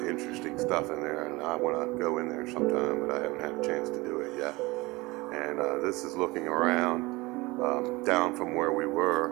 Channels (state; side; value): quieter; left; 22.5 dB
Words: interesting stuff in there, and I want to go in there sometime, but I haven't had a chance to do it yet. And this is looking around down from where we were